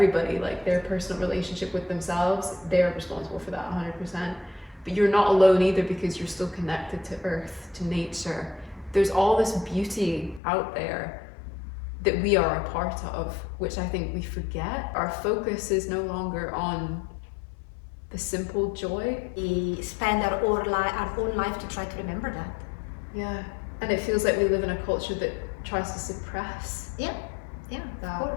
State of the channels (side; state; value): right; drops out; at 10.4 s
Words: like their personal relationship with themselves, they're responsible for that 100%. But you're not alone either, because you're still connected to earth, to nature. There's all this beauty out there that we are a part of, which I think we forget. Our focus is no longer on the simple joy. We spend our own life to try to remember that. Yeah, and it feels like we live in a culture that tries to suppress.